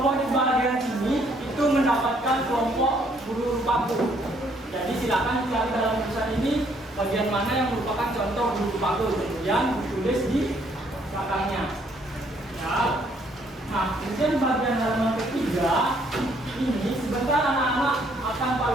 di bagian sini itu mendapatkan kelompok guru paku. Jadi silakan cari dalam tulisan ini bagian mana yang merupakan contoh guru paku, kemudian ditulis di belakangnya. Ya. Nah, kemudian bagian halaman ketiga ini sebentar anak-anak akan Pak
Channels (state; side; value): normal; both; correlation 0.67